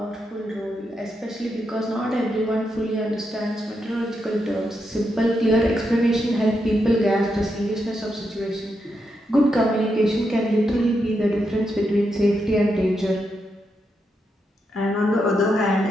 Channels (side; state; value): both; normal; correlation 0.83